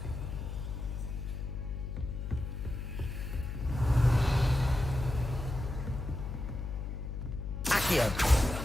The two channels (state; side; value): noise; left; hum, 5 dB below the sound